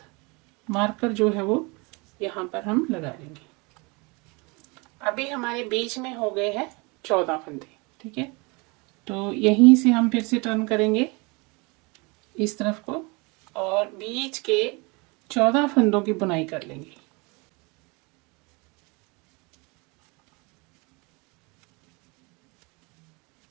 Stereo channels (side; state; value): left; quieter; 28.2 dB